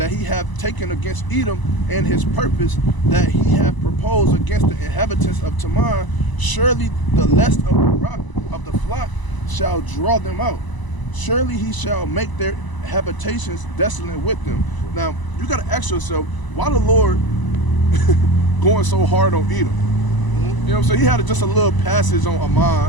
he hath taken against Edom, and his purpose that he hath proposed against the inhabitants of Teman. Surely the lest of the rock of the flock shall draw them out. Surely he shall make their habitations desolate with them. Now, you got to ask yourself, why the Lord going so hard on Edom? You know what I'm saying? He had just a little passage on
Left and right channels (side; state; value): right; late; 1.0 ms